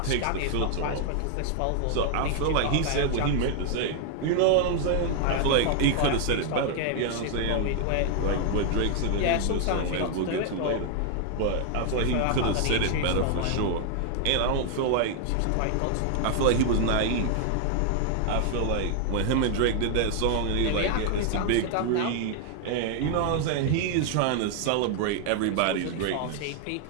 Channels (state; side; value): different; both; correlation 0.00